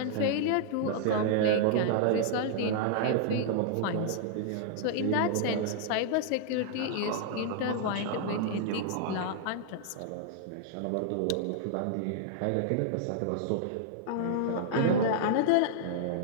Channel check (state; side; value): different; both; correlation -0.01